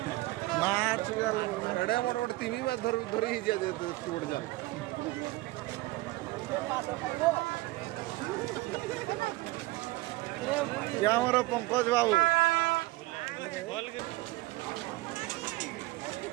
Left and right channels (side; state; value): left; quieter; 20.1 dB